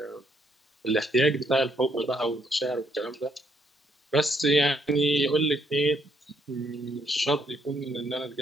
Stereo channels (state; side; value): normal; both; correlation 0.72